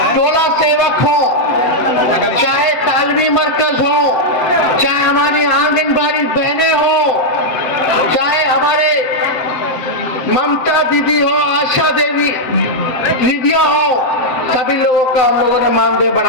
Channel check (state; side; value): late; right; 7.9 ms